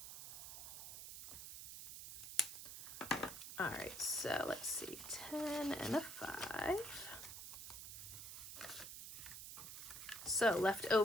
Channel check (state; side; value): noise; right; hiss, 9 dB below the sound